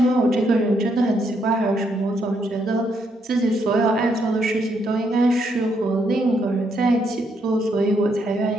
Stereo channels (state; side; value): normal; both; correlation 0.75